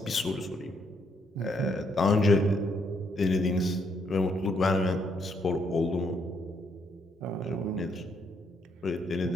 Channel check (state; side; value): normal; both; correlation 0.73